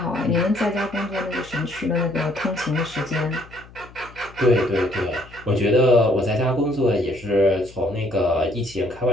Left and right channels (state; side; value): noise; left; hum, 21 dB below the sound